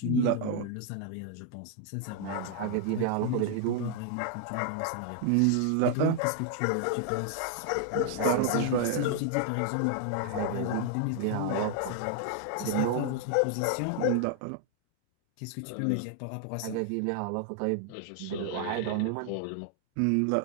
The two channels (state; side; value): different; both; correlation 0.00